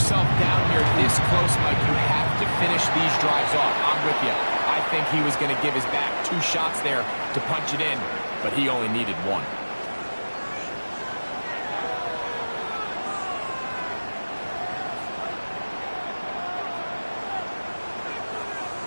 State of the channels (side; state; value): both; inverted; correlation -1.00